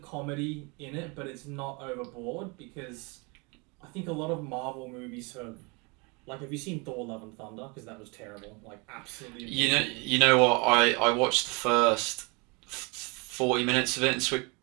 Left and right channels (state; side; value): quieter; left; 29.9 dB